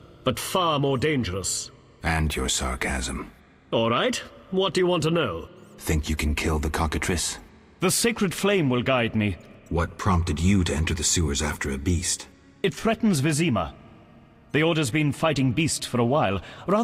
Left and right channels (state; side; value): identical; both; correlation 1.00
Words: but far more dangerous. And your sarcasm. All right, what do you want to know? Think you can kill the cockatrice? The sacred flame will guide me. What prompted you to enter the sewers after a beast? It threatens Vizima. The Order's been fighting beast for a while,